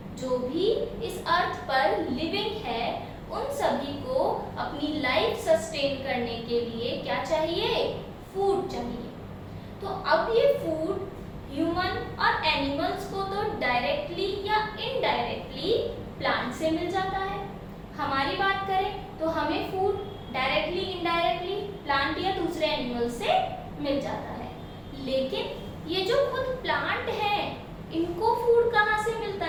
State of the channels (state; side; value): identical; both; correlation 1.00